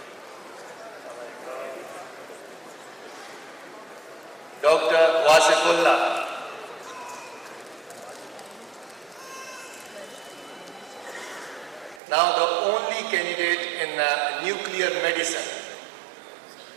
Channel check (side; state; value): left; drops out; at 12.0 s